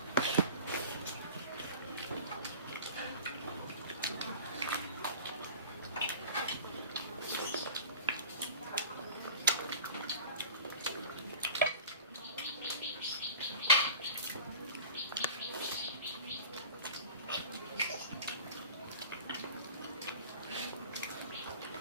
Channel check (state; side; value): inverted; both; correlation -0.40